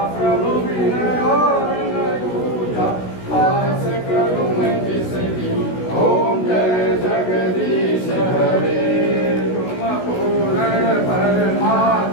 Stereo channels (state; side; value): late; right; 16 ms